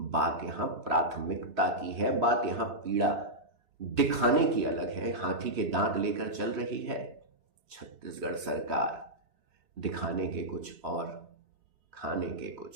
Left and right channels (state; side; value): late; left; 3.1 ms